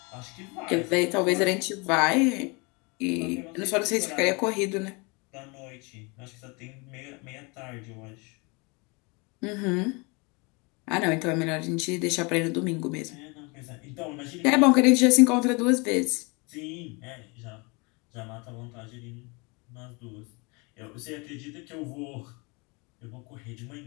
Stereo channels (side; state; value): right; quieter; 29.1 dB